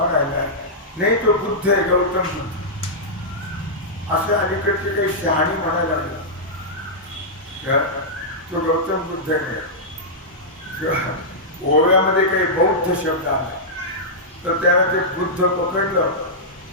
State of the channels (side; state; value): both; normal; correlation -0.11